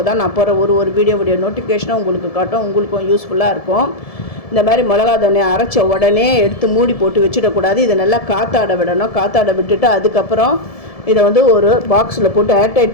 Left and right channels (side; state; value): right; late; 1.7 ms